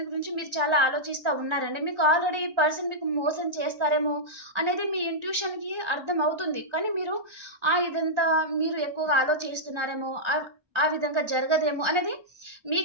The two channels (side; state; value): left; late; 1.3 ms